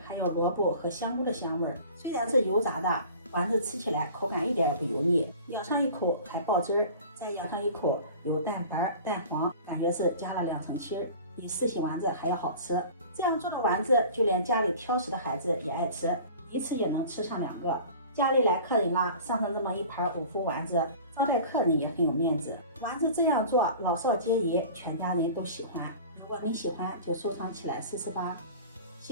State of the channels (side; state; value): both; inverted; correlation -0.41